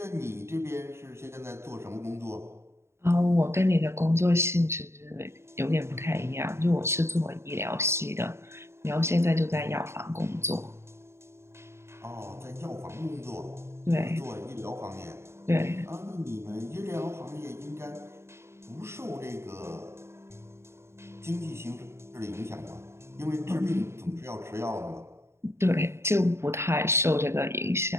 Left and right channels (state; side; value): late; left; 0.13 ms